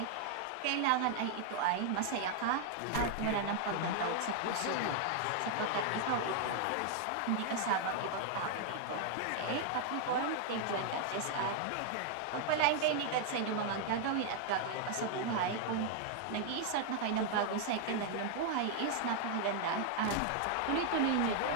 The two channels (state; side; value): different; both; correlation 0.00